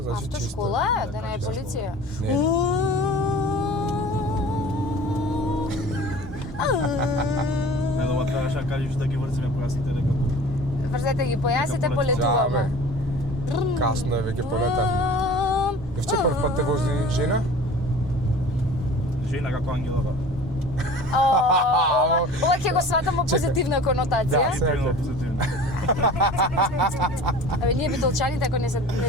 значи чисто. Автошкола е, да не е чисто. полиција. Не. Не, дома требаше да кажеш да ги врзиме појасите дека Врзете ги појасите, Дека полетуваме. Касно е веќе полетавме. Евче прв пат те вози жена? жена како ангелова. Ова ќе го сватам во позитивна конотација. Да. Позитивно, позитивно. Абе, ние битолчаните ако не се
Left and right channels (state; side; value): normal; both; correlation 0.42